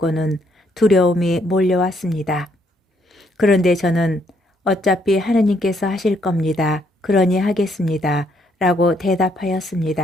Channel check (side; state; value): both; normal; correlation 0.71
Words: 두려움이 몰려왔습니다. 그런데 저는 어차피 하느님께서 하실 겁니다. 그러니 하겠습니다. 라고